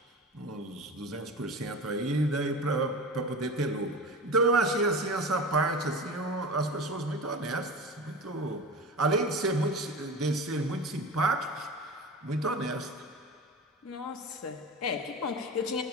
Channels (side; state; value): both; normal; correlation 0.31